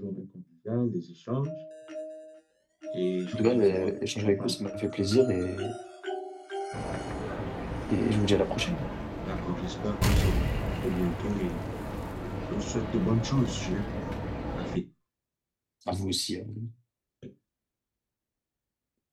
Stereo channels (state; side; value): identical; both; correlation 1.00